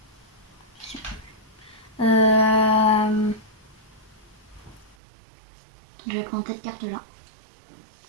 Euh, je vais prendre cette carte-là.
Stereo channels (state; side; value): drops out; left; at 5.0 s